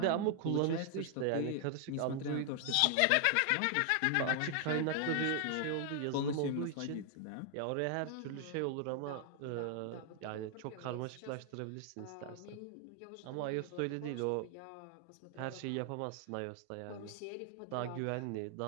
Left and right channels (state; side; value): different; both; correlation 0.00